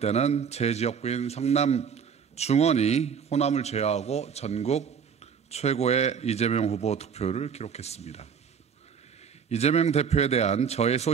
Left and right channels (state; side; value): quieter; left; 6.9 dB